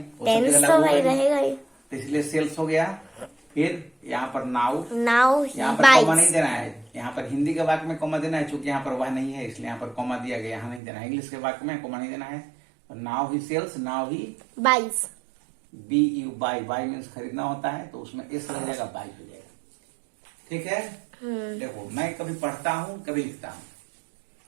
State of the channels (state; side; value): drops out; left; at 10.8 s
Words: सब टेंस जगह तो लागू भाई होगा ही। रहेगा ही। तो इसलिए सेल्स हो गया। फिर यहाँ पर नाउ, नाउ ही यहाँ पर कॉमा नहीं बाइट्स, देना है। यहाँ पर हिंदी के वाक्य में कॉमा देना है, चूंकि यहाँ पर वह नहीं है इसलिए यहाँ पर कॉमा दिया गया, यहाँ नहीं देना है। इंग्लिश के वाक्य में कॉमा नहीं देना है। Now he sells, now he buys. BU, buy. Buy means खरीदना होता है, तो उसमें S लग जाएगा, बाई हो जाएगा। ठीक है, देखो मैं कभी पढ़ता हूँ कभी लिखता हूँ।